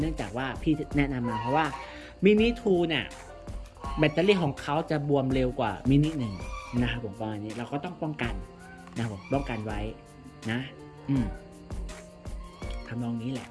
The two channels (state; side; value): identical; both; correlation 1.00